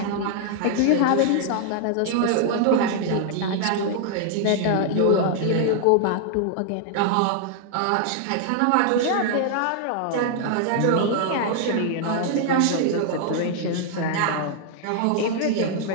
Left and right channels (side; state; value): both; different; correlation 0.00